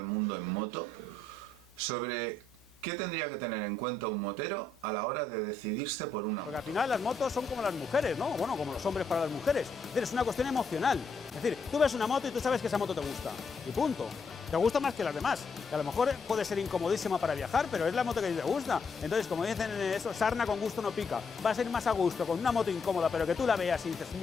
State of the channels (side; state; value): right; quieter; 3.3 dB